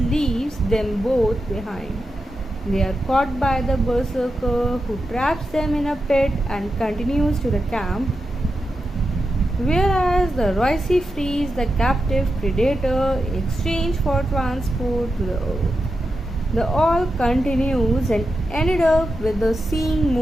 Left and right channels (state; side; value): normal; both; correlation 0.88